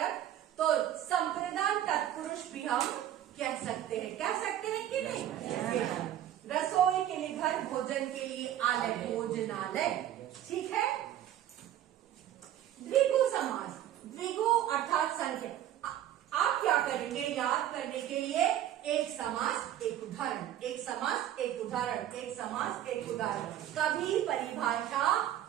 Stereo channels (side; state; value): left; quieter; 11.8 dB